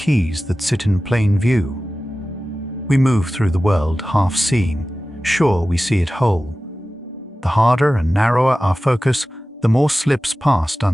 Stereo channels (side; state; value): both; normal; correlation 0.95